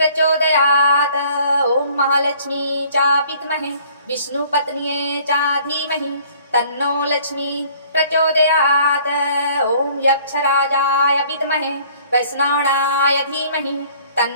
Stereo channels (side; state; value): both; inverted; correlation -0.55